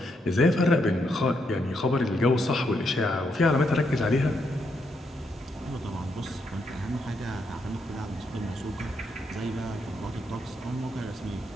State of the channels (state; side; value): normal; both; correlation 0.79